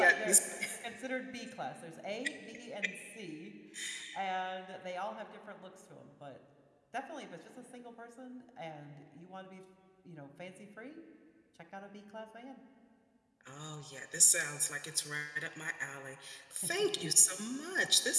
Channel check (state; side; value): identical; both; correlation 1.00